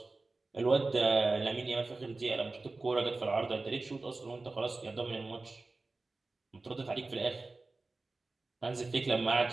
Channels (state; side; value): quieter; left; 3.4 dB